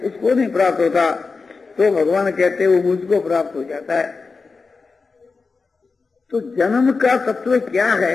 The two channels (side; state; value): right; quieter; 4.4 dB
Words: उसको नहीं प्राप्त होता। तो भगवान कहते हैं वो मुझको प्राप्त हो जाता है। तो जन्म का तत्व क्या